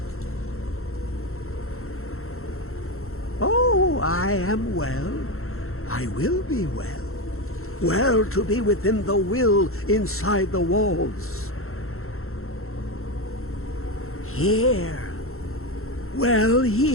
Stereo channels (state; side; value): late; right; 0.62 ms